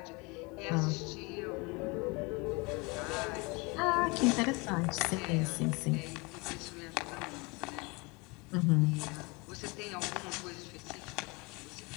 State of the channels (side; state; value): right; quieter; 27.7 dB